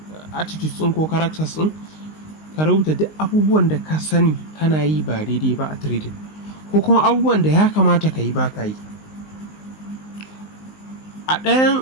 attitudes ɗin ko characters ɗin, ka rubuta duk abubuwan da ka sani kana yi ba daidai ba a trading, ko kuma abubuwan da ya kamata ka yi ba ka yi. A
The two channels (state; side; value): late; right; 19 ms